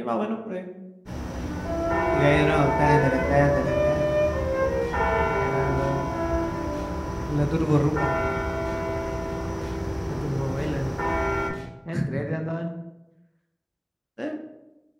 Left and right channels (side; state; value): both; identical; correlation 1.00